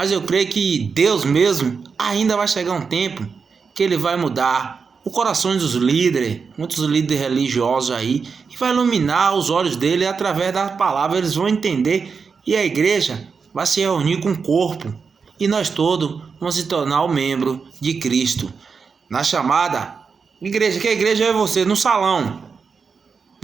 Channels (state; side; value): quieter; left; 5.4 dB